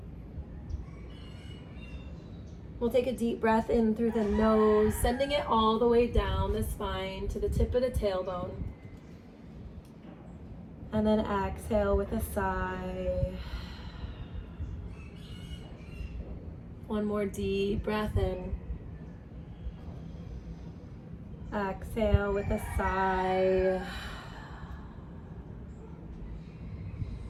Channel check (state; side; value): identical; both; correlation 1.00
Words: We'll take a deep breath in through the nose, sending it all the way down the spine to the tip of the tailbone. And then exhale with a sigh. One more deep breath in. Exhale with a sigh.